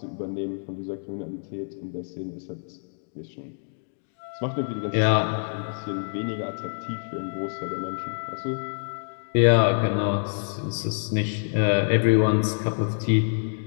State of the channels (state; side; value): silent; right; digital silence